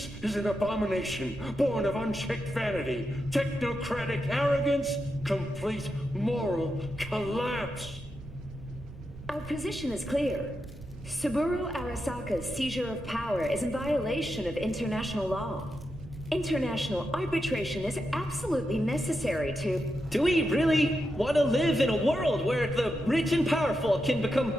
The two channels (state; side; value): noise; right; rumble, 15 dB below the sound